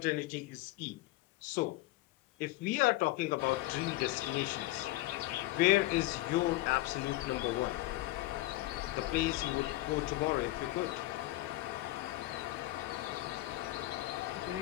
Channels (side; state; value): right; quieter; 17.8 dB